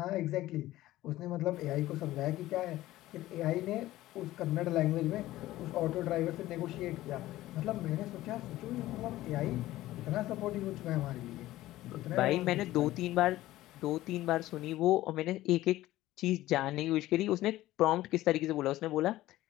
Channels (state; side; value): quieter; right; 15.9 dB